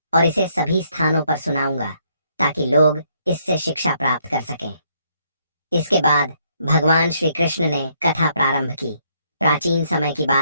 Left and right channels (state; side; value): inverted; both; correlation -0.71